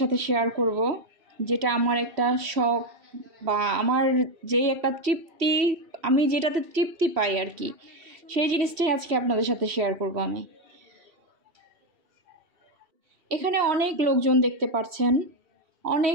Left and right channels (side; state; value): left; late; 3.1 ms